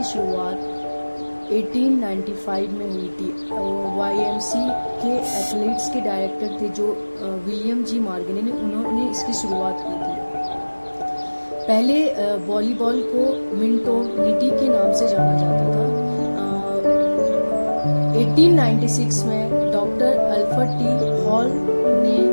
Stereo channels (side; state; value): both; inverted; correlation -1.00